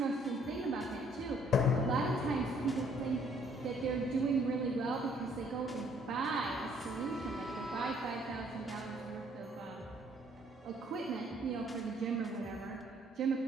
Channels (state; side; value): normal; both; correlation 0.63